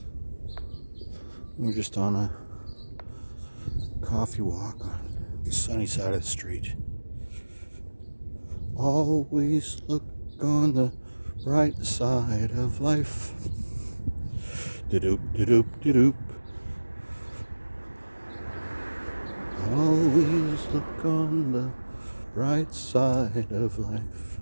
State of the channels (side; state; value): both; inverted; correlation -1.00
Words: We're just on a coffee walk on the sunny side of the street. Always look on the bright side of life. Da-doop, da-doop, da-doop. Always look on the bright side of life.